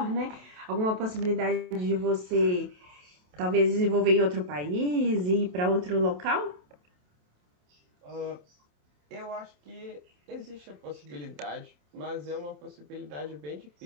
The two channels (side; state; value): left; late; 28 ms